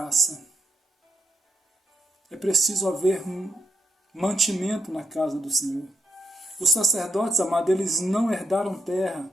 É preciso haver um mantimento na casa do Senhor. Os sacerdotes, amados, eles não herdaram terra,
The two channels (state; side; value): normal; both; correlation 0.80